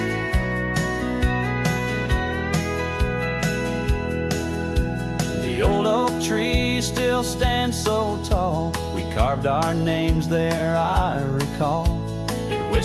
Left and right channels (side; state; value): both; identical; correlation 1.00